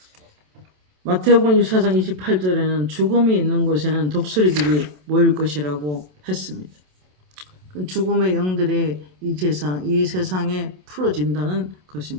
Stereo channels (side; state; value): left; late; 27 ms